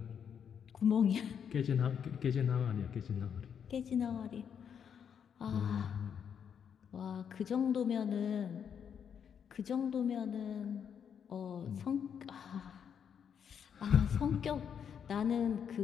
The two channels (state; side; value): quieter; right; 7.7 dB